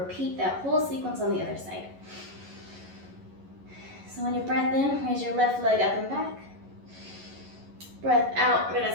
that whole sequence on the other side. So on your breath in, raise your left leg up and back. Breath out, we're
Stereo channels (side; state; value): left; late; 11 ms